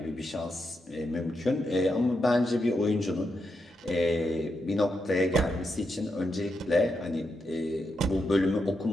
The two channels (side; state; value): both; normal; correlation 0.84